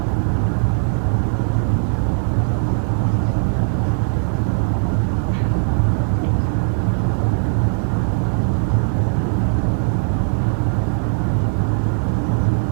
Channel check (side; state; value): left; silent; digital silence